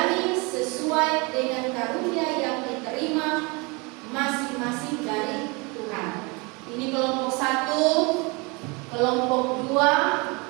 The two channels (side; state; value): left; quieter; 28.4 dB